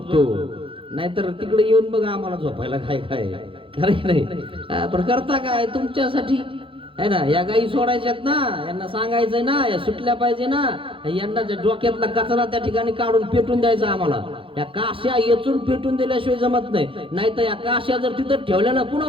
नाहीतर तिकडे येऊन बघा आम्हाला झोपायला काय काय खरं नाही. पण करता काय तुमच्यासाठी, आहे ना? या गाई सोडायच्यात ना, यांना सांगायचंय ना, या सुटल्या पाहिजे ना, यांना डोक्यातला कचरा त्या ठिकाणी काढून पेटून द्यायचा आम्हाला. या काश्या येचून पेटून दिल्याशिवाय जमत नाही. नाहीतर या काश्या जर तिथं ठेवल्या ना पुन्हा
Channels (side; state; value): left; late; 0.25 ms